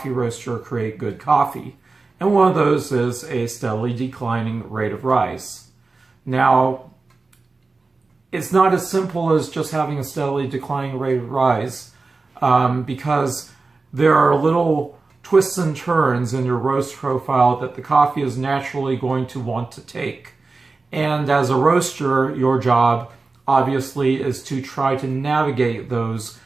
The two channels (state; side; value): quieter; left; 3.8 dB